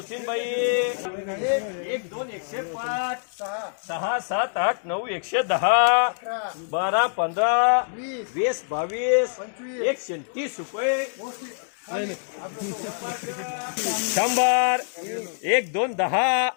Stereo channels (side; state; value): right; silent; digital silence